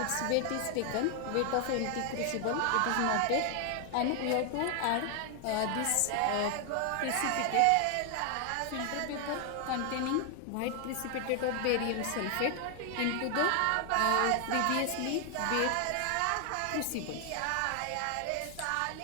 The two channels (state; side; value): different; both; correlation 0.00